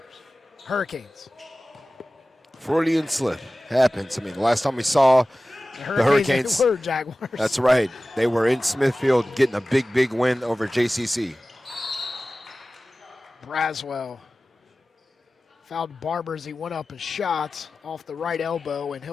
Hurricanes. Freudian slip happens. I mean, the last time we saw the Hurricanes were Jaguars. That's right. They were in Smithfield getting a big win over JCC. Braswell fouled Barber as he went up and shot off the right elbow, and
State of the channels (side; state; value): both; normal; correlation 0.96